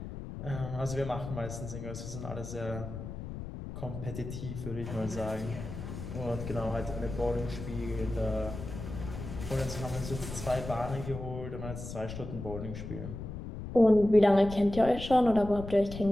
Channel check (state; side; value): noise; left; rumble, 8 dB below the sound